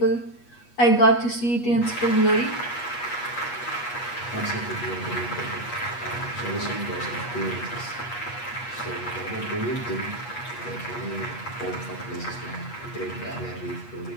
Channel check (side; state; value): right; late; 8.3 ms